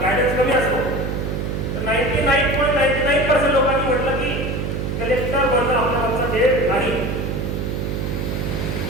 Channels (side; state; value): right; noise; hum, 2 dB below the sound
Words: गायडन्स कमी असतो. तर 99.99% लोकांनी म्हटलं की कलेक्टर बनणं आपल्या आमचा ध्येय नाही.